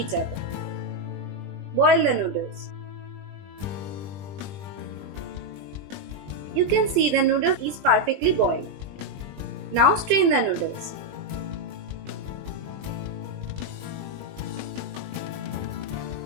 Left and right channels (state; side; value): late; left; 20 ms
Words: other. Boil the noodles. You can see the noodles is perfectly boiled. Now strain the noodles.